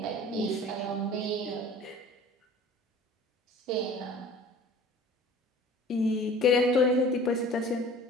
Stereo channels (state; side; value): normal; both; correlation 0.45